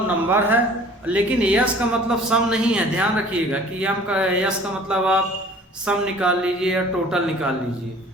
नंबर है, लेकिन S का मतलब सम नहीं है। ध्यान रखिएगा कि S का मतलब आप सम निकाल लीजिए या टोटल निकाल लीजिए।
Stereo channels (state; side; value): normal; both; correlation 0.49